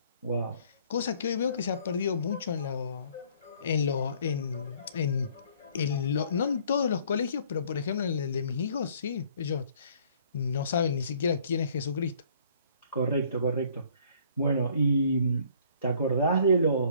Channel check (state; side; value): inverted; both; correlation -0.59